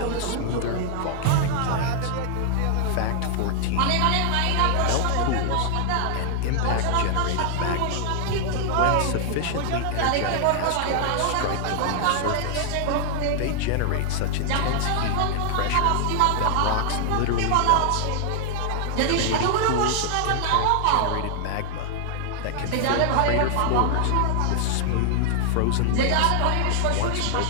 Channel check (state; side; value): different; both; correlation 0.00